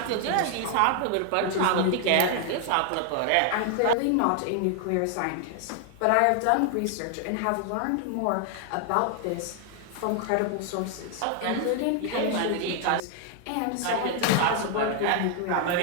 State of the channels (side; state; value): both; different; correlation 0.00